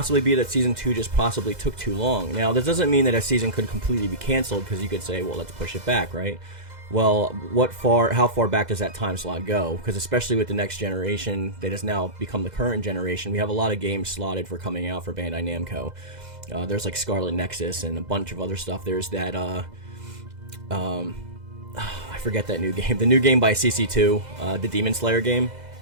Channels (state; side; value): late; left; 2.0 ms